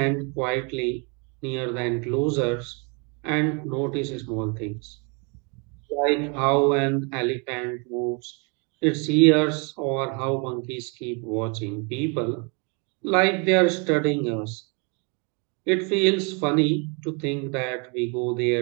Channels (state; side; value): quieter; left; 33.9 dB